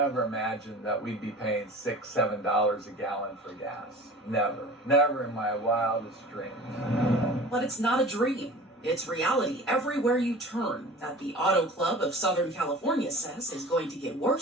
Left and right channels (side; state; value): both; normal; correlation 0.40